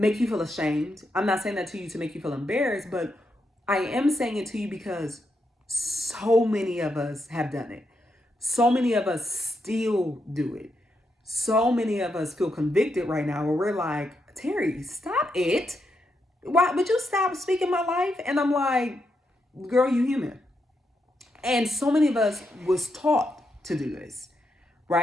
you feel ashamed. I'm not saying that to you to make you feel embarrassed, but I am saying it to you because so many of us have done it. So many of us still do it. So many of us feel convicted right now where we're like, Teri, stop it. Why would you stop speaking my life? And I'm like, girl, you human. And so many of us was taught to do this,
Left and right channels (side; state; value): both; normal; correlation 0.82